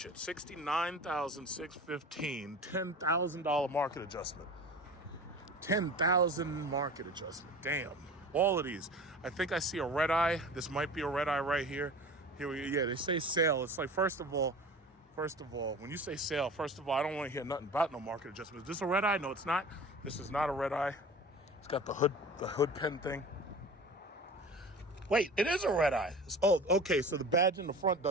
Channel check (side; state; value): both; normal; correlation 0.37